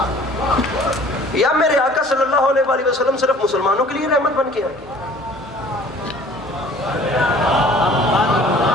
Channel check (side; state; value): both; normal; correlation 0.50